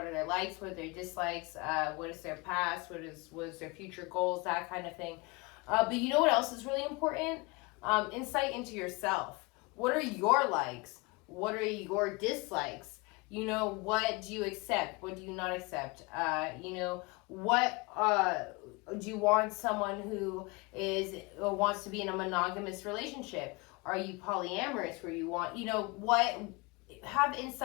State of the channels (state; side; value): quieter; right; 26.9 dB